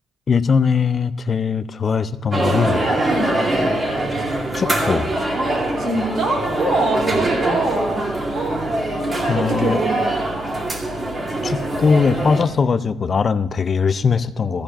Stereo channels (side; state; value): both; normal; correlation 0.81